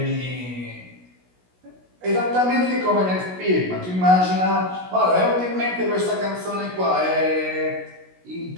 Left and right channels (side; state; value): left; late; 16 ms